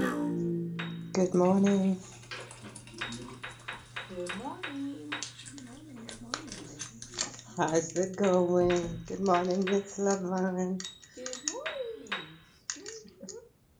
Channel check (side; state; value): both; identical; correlation 1.00